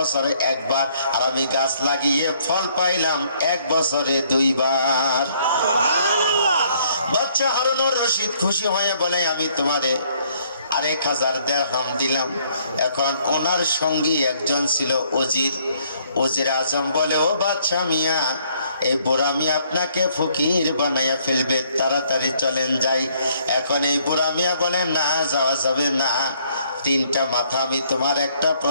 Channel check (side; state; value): both; inverted; correlation -0.66